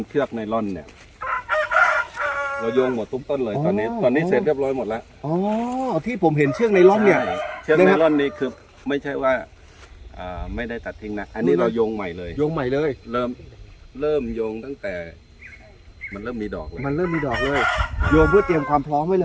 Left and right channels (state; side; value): identical; both; correlation 1.00